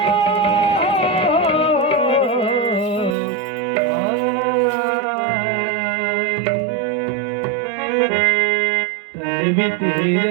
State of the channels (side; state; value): left; drops out; at 3.2 s